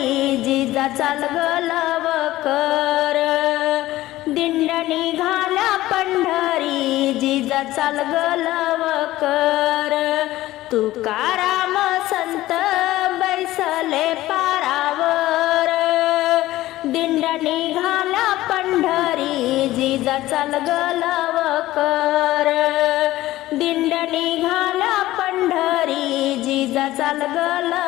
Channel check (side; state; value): right; quieter; 16.2 dB